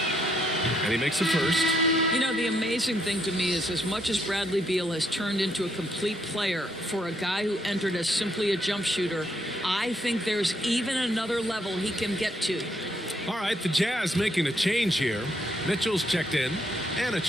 And he makes a first. You know, the amazing thing to me is as much as Bradley Beal has turned into a complete player for a guy who entered as simply a jump shooter, I think there's even another level he can get to. All right, the Jazz making a change here. Mitchell's checked in. And a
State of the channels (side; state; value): both; normal; correlation 0.73